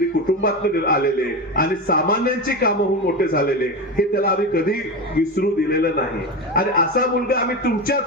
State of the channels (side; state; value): both; normal; correlation 0.20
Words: कुटुंबातून आलेले आणि सामान्यांची कामं होऊन मोठे झालेले, हे त्याला आम्ही कधी विसरू दिलेलं नाही. आणि असा मुलगा आम्ही